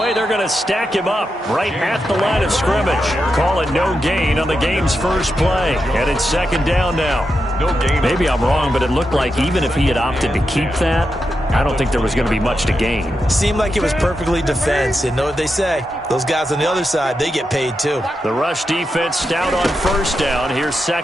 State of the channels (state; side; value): normal; both; correlation 0.87